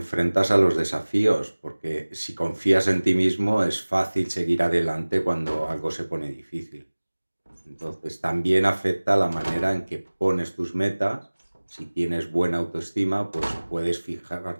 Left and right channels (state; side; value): inverted; both; correlation -1.00